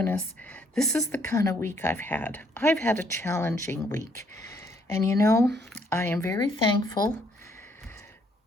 This is the kind of week I've had. I've had a challenging week. And you know, I am very thankful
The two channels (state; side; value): normal; both; correlation 0.68